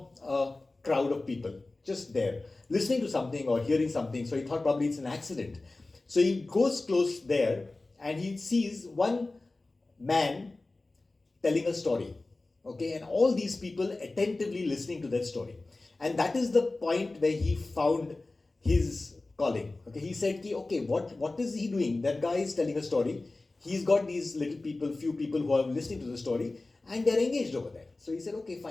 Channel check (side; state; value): right; quieter; 3.2 dB